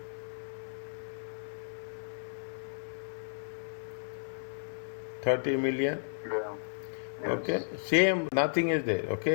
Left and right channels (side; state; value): right; silent; digital silence